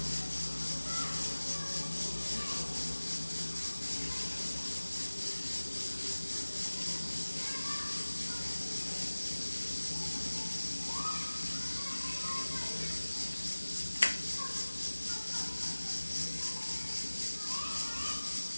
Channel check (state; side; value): inverted; both; correlation -1.00